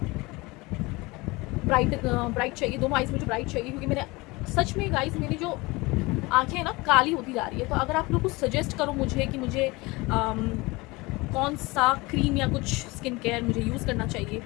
ब्राइट चाहिए, दोनों आइज़ में मुझे ब्राइट चाहिए क्योंकि मेरे सच में गाइस मेरी जो आँखें हैं ना काली होती जा रही है। तो अगर आप लोग कुछ सजेस्ट करो मुझे कि मुझे कौन सा क्रीम या कुछ स्किन केयर मुझे यूज़ करना चाहिए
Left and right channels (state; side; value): quieter; right; 23.4 dB